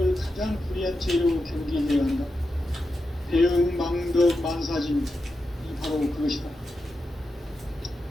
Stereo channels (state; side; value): normal; both; correlation 0.88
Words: 가장 불의한 죄로 경계해야 한다. 배은 망덕 만사짐이 바로 그것이다.